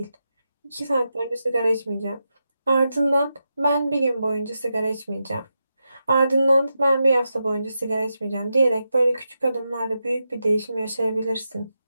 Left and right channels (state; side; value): inverted; both; correlation -0.88